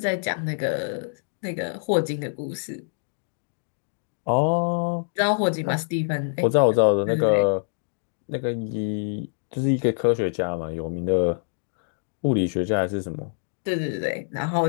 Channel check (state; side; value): silent; right; digital silence